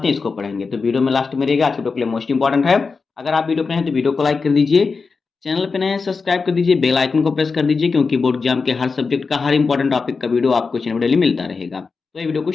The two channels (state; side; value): quieter; right; 4.7 dB